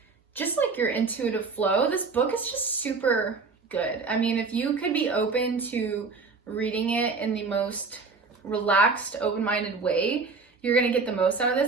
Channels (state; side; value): quieter; left; 4.5 dB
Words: just like your intuitive flow, this book is just super good. I mean, if you could be open to reading it in the most relaxed, open-minded way, you're gonna get the most out of